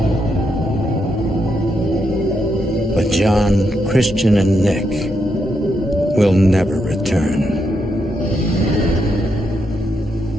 But John, Christian, and Nick will never return.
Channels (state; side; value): normal; both; correlation 0.81